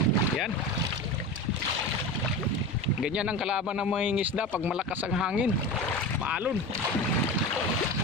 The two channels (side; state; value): both; normal; correlation 0.28